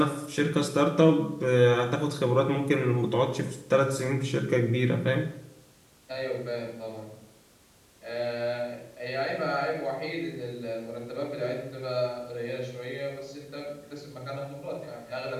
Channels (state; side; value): identical; both; correlation 1.00